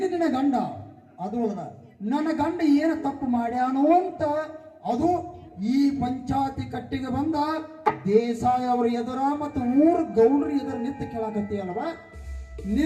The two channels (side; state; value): both; identical; correlation 1.00